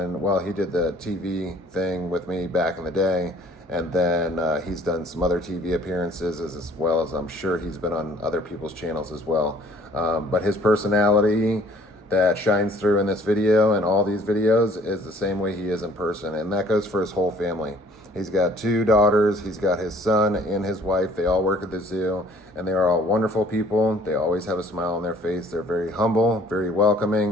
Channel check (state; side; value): normal; both; correlation 0.56